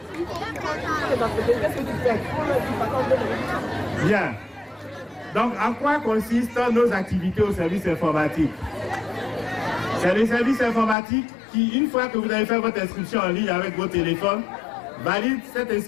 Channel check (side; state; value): right; drops out; at 11.0 s